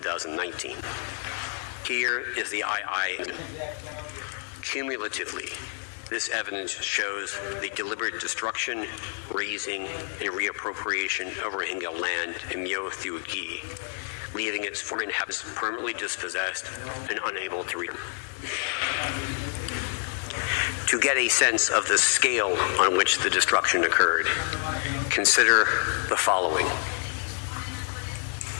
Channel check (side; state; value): right; silent; 59 dB below the other